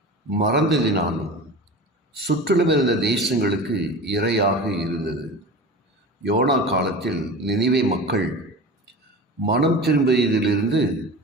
மறந்ததினாலும் சுற்றிலும் இருந்த தேசங்களுக்கு இரையாக இருந்தது. யோனா காலத்தில் நினிவே மக்கள் மனம் திரும்பியதிலிருந்து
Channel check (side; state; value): both; normal; correlation 0.33